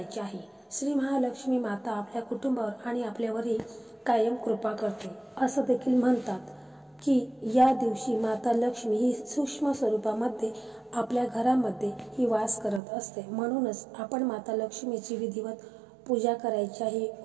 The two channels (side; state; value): left; drops out; at 12.8 s